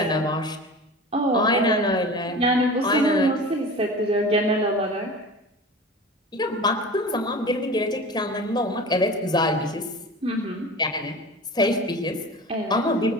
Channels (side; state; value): both; normal; correlation 0.35